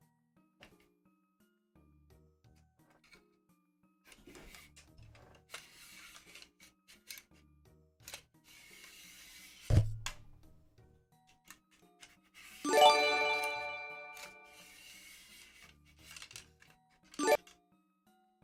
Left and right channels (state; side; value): identical; both; correlation 1.00